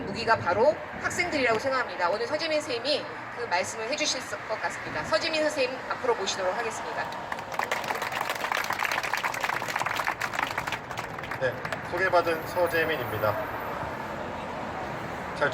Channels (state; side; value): identical; both; correlation 1.00